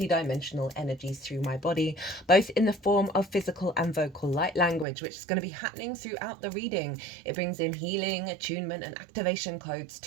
energies through my body, both in the form of physical and vocal light language, which is going to be happening throughout the reading. It brings in healing, attunement, and activation codes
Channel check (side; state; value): left; drops out; at 4.9 s